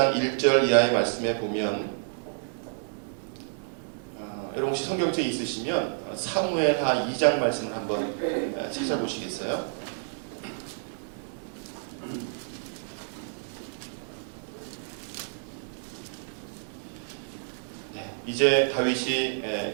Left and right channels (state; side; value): silent; left; digital silence